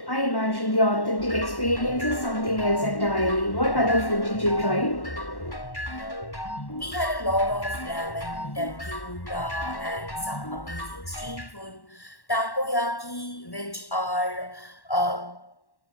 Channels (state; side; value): late; right; 1.1 ms